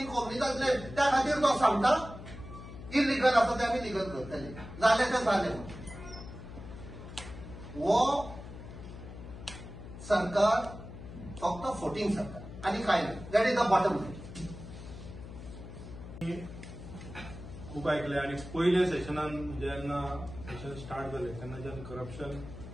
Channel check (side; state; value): left; noise; hum, 13 dB below the sound